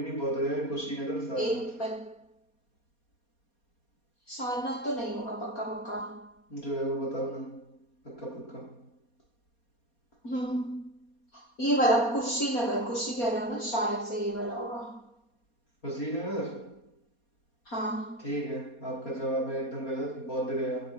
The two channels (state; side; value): late; right; 4.2 ms